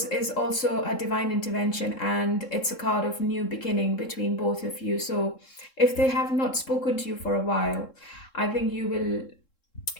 is also a divine intervention, and it's a card of new beginning between both of you. So if they have not spoken to you for a while, I think you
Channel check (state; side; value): late; right; 3.7 ms